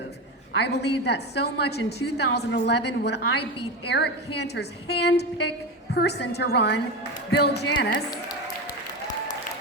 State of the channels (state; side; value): normal; both; correlation 0.20